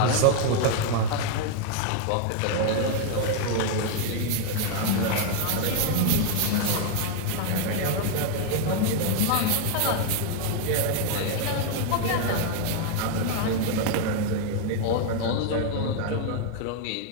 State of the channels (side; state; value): both; different; correlation 0.00